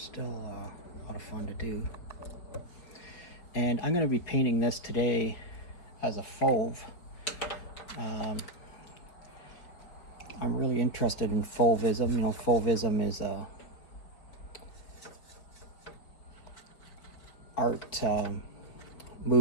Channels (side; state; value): right; late; 4.9 ms